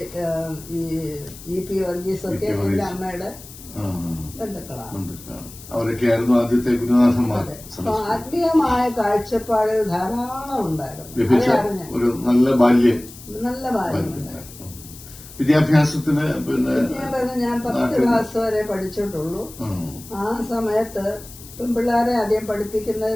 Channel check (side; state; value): left; noise; hiss, 17 dB below the sound